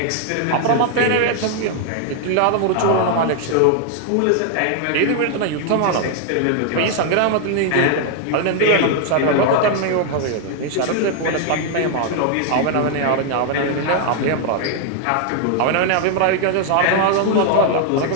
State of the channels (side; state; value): both; different; correlation 0.00